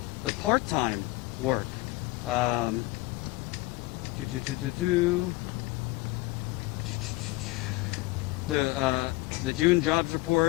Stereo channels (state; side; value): quieter; right; 21.1 dB